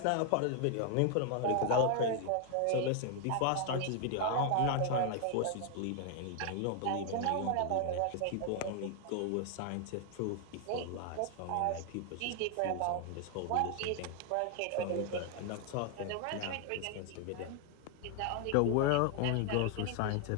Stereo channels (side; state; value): both; different; correlation 0.00